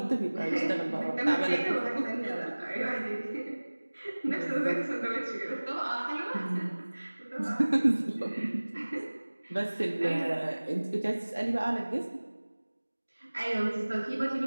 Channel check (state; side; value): inverted; both; correlation -1.00